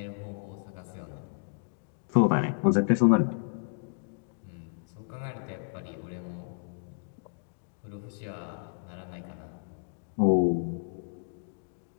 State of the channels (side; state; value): right; silent; digital silence